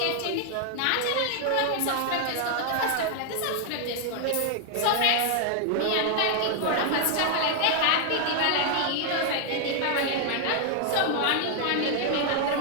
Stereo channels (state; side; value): different; both; correlation 0.00